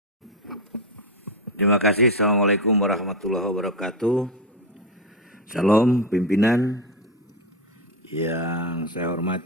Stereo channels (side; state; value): both; normal; correlation 0.13